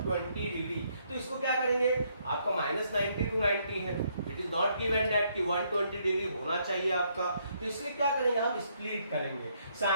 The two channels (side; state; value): both; inverted; correlation -0.71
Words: डिग्री। तो इसको क्या करेंगे, आपका -90 to 90 है, it is not given that कि 120 डिग्री होना चाहिए आपका, तो इसलिए क्या करेंगे, हम स्प्लिट करेंगे,